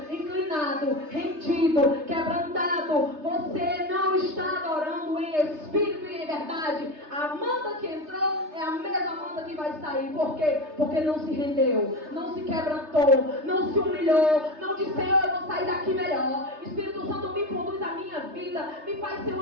inclinado, rendido, quebrantado, você não está adorando em espírito e em verdade. A Amanda que entrou é a mesma Amanda que vai sair. Por quê? Porque não se rendeu, não se quebrantou, não se humilhou, não disse: Senhor, eu vou sair daqui melhor. Espírito Santo, me conduz a minha vida, me faz ser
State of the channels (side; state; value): left; late; 3.3 ms